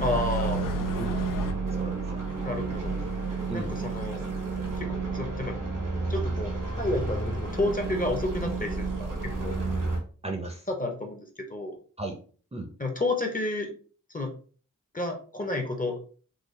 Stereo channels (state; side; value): normal; both; correlation 0.55